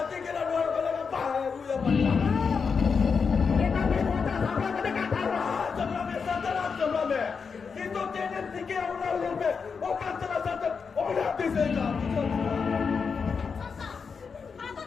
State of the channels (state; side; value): quieter; right; 5.6 dB